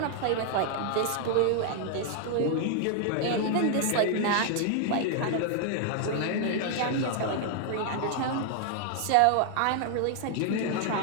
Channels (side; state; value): both; different; correlation 0.00